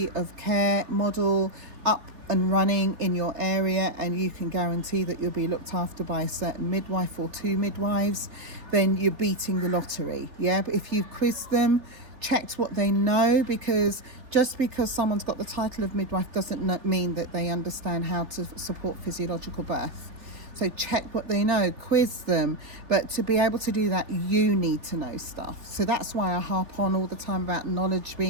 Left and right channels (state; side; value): late; left; 3.6 ms